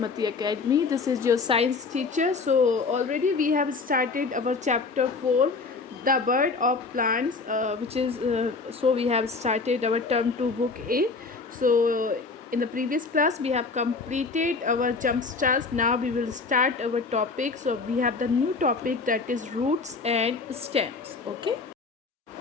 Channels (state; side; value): quieter; right; 4.3 dB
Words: Academy. This is your science teacher. So already we have started our chapter 4, the bird of plants, so we have started our term 2 book A. So in the previous class we have completed our jump starts. Now we will start our topic. So we have the new topic, that is roots and stems. Okay.